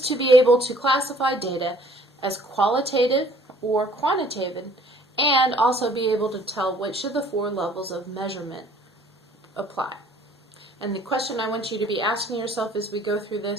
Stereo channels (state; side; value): normal; both; correlation 0.56